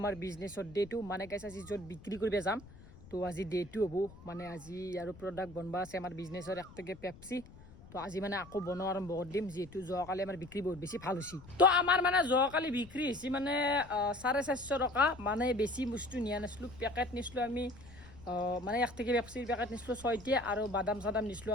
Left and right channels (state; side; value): noise; left; rumble, 20 dB below the sound